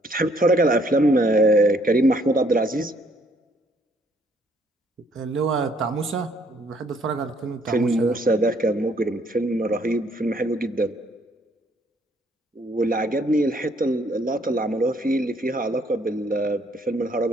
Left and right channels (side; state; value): both; normal; correlation 0.66